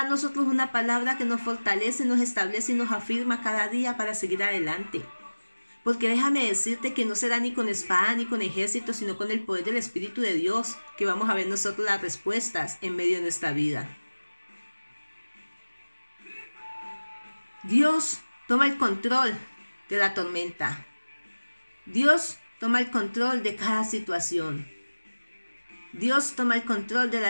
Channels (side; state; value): both; inverted; correlation -1.00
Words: a nosotros una palabra que nos fortalece, nos establece y nos afirma cada día para seguir adelante. Porque déjame decirte que no será ni con espada ni con ejército, sino con el poder del Espíritu de Dios que vamos a ver nosotros las respuestas en medio de nuestra vida. Dios toma el control de la tormenta. Dios toma el control de cada situación. Dios toma el control de la